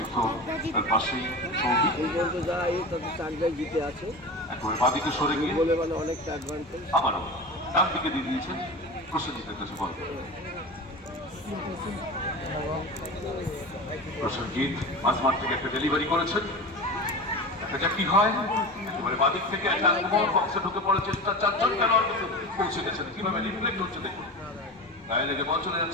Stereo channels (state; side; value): normal; both; correlation 0.29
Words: তার পাশেই সৌভিক জিতে আছে একেবারে বাদিকে সরে গিয়ে বলে মানে অনেকটা অ্যাডভান্টেজ। আবারও ডান দিকে দিয়ে দিয়েছেন প্রসেনজিতের কাছে বল। প্রসেনজিৎ মাঝমাঠ থেকে একটা ডেলিভারি করেছেন, দেখা যাক কি হয়। একেবারে বাদিক থেকে একটা আক্রমণ, বক্সে ঢুকে পড়ার চেষ্টা, চারজন খেলোয়াড় কিন্তু পৌঁছে গেছেন, কিভাবে রিফ্লেক্ট হচ্ছে দেখুন, গায়ে লেগে বল চলে